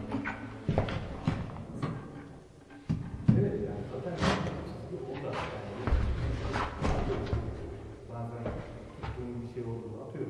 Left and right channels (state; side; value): identical; both; correlation 1.00